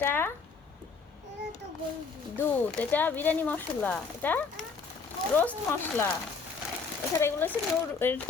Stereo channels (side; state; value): right; quieter; 5.0 dB